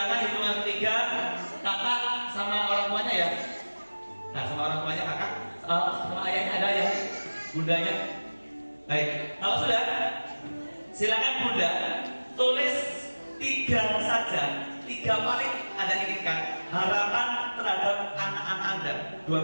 hitungan 3, kakak sama orang tuanya ya. Nah, sama orang tuanya kakak, sama ayahnya ada ya, bundanya. Baik, kalau sudah, silakan bunda tulis 3 saja, 3 paling Anda inginkan harapan terhadap anak-anak Anda.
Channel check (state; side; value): inverted; both; correlation -1.00